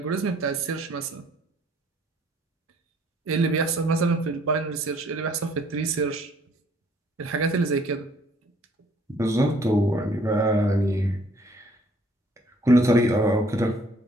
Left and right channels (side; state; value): both; normal; correlation 0.60